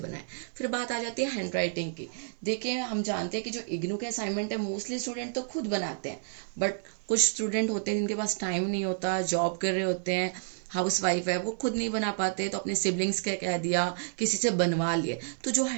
फिर बात आ जाती है हैंड राइटिंग की। देखिए हम जानते हैं कि जो इग्नू के असाइनमेंट है मोस्टली स्टूडेंट तो खुद बनाते हैं, बट कुछ स्टूडेंट होते हैं जिनके पास टाइम नहीं होता, जॉब कर रहे होते हैं, हाउस वाइफ है, वो खुद नहीं बना पाते, तो अपने सिबलिंग्स के कह दिया, किसी से बनवा लिए। तो जो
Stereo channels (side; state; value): left; silent; digital silence